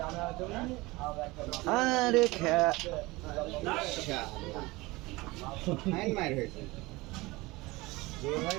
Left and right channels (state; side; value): quieter; left; 21.8 dB